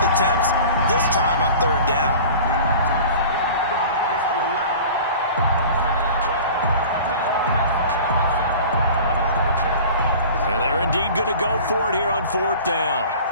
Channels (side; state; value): both; inverted; correlation -0.41